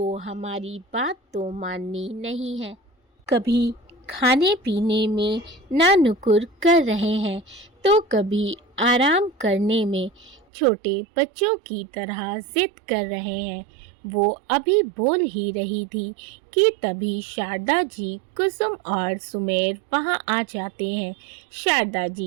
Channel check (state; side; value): drops out; left; at 10.4 s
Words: हमारी बात तो माननी नहीं है। कभी खाने पीने में ना नुकुर कर रहे हैं तो कभी आराम करने में छोटे बच्चों की तरह जिद कर रहे हैं। वो अभी बोल ही रही थी कि तभी शारदा जी, कुसुम और सुमेर वहाँ आ जाते हैं। शारदा